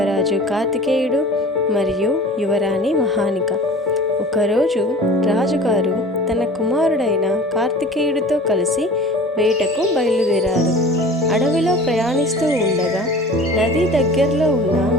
కార్తికేయుడు మరియు యువరాణి మహానిక. ఒకరోజు రాజుగారు తన కుమారుడైన కార్తికేయుడితో కలిసి వేటకు బయలుదేరారు. అడవిలో ప్రయాణిస్తూ ఉండగా నది దగ్గరలో ఉన్న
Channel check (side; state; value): both; normal; correlation 0.41